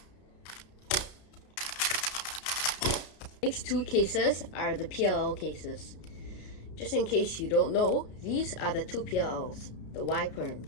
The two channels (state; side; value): late; right; 33 ms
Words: Next 2 cases are the PLL cases. Just in case you don't know, these are the 2 PLLs, the Y perm,